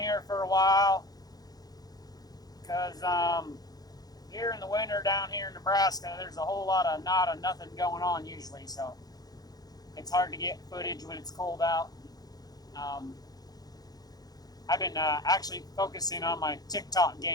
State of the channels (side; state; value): right; late; 0.19 ms